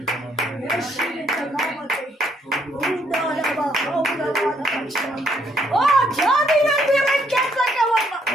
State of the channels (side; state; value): both; normal; correlation 0.70